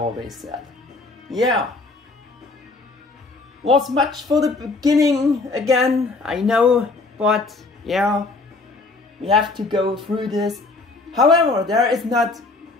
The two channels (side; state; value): right; quieter; 3.6 dB